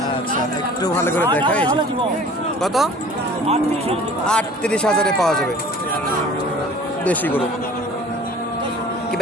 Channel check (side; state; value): both; normal; correlation 0.46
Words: আচ্ছা, একটু ভালো করে দেখাই। কত? 38,000-এ পাওয়া যাবে দেশি গরু। কি